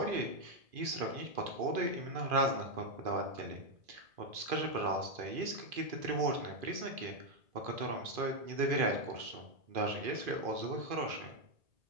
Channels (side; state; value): left; late; 2.5 ms